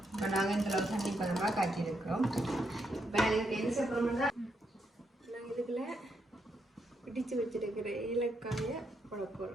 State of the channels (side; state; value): both; normal; correlation 0.79